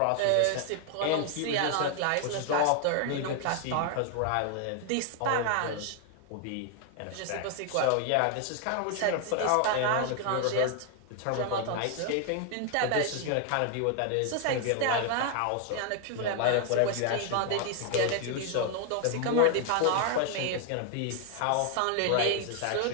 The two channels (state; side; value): different; both; correlation 0.00